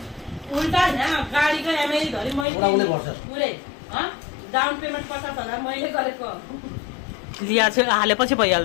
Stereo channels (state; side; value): drops out; right; at 2.5 s